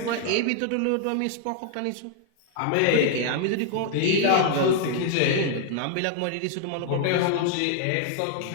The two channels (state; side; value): different; both; correlation 0.00